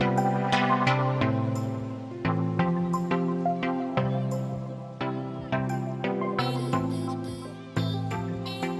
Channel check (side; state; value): both; identical; correlation 1.00